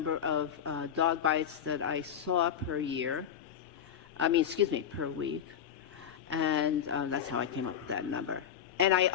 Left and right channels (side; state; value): right; quieter; 8.9 dB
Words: of dog bites that I saw per week. And that's how I came up with that number. And I